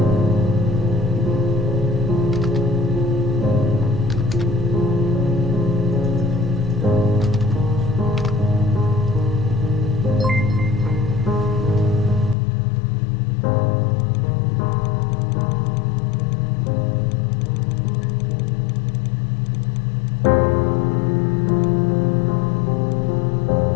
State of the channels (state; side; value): drops out; right; at 12.4 s